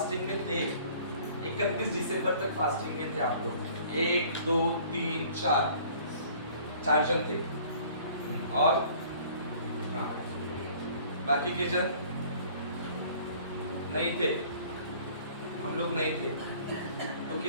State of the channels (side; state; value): both; inverted; correlation -0.52